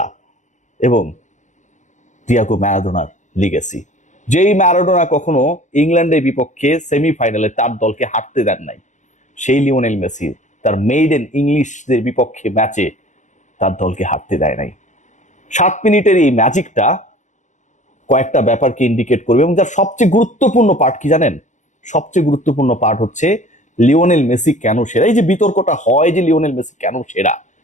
এবং ডিয়াগো ম্যারাডোনার লিগেসি। যেই ম্যারাডোনা কখনো ইংল্যান্ডের বিপক্ষে সেমিফাইনালে তার দলকে হারতে দেন নাই, সেই লিওনেল মেসি তার মেইডেন ইংলিশদের বিপক্ষে ম্যাচে তার দলকে হারতে দেয় নাই। 7 মিনিটের এই ম্যাজিকটা কয়েকটা ব্যাপারকে ইন্ডিকেট করবে, এবং যার সবচেয়ে গুরুত্বপূর্ণ পার্ট কি জানেন? সবচেয়ে গুরুত্বপূর্ণ পার্ট হচ্ছে লিওনেল মেসি কেন সেরা। এই যে বিতর্কটা হয় যে লিওনেল মেসি কেন সেরা,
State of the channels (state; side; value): late; right; 0.35 ms